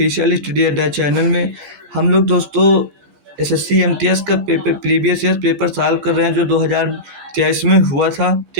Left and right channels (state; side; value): late; left; 14 ms